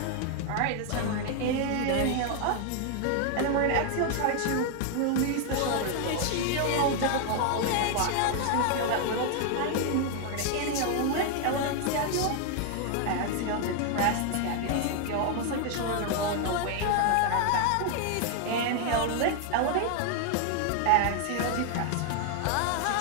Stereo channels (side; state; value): both; different; correlation 0.00